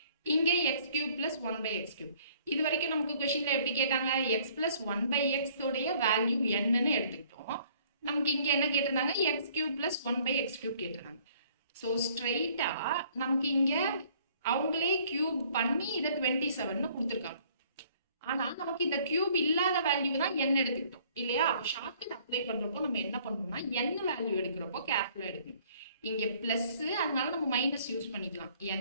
இங்க x cube plus 1/x cube. இது வரைக்கும் நமக்கு கொஸ்டின்ல எப்படி கேட்டாங்க, x plus 1/x உடைய வேல்யூ என்னன்னு எடுத்துக்கிட்டோம். நமக்கு இங்க என்ன கேட்டிருந்தாங்க, x cube plus 1/x cube கேட்டிருந்தாங்க. ஸோ ஸ்ட்ரைட்டா நமக்கு இங்க அவங்களே கியூப் பண்ணி இதை 27ன்னு கொடுத்துருக்காங்க. ஆனா நமக்கு இந்த கியூப் இல்லாத வேல்யூ தான் n எடுத்துக்கிட்டோம் இல்லையா? அப்போ ஷார்ட்கட் அப்ளை பண்றப்போ நம்ம என்ன பண்ணணும்னா n வேல்யூ எடுக்கிறப்போ கேர்ஃபுல்லா எடுக்கணும். இங்க பிளஸ், அதனால நம்ம மைனஸ் யூஸ் பண்ணிக்கலாம்.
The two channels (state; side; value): inverted; both; correlation -0.59